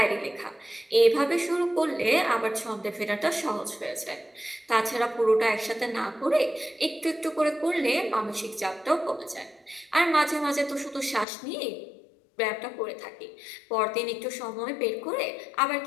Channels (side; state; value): right; drops out; at 11.2 s